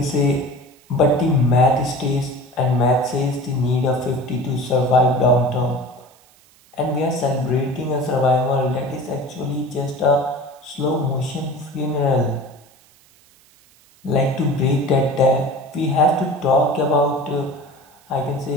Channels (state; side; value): noise; right; hiss, 30 dB below the sound